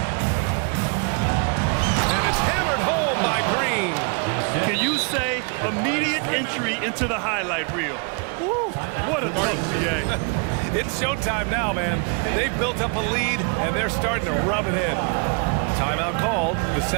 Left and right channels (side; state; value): left; quieter; 36.6 dB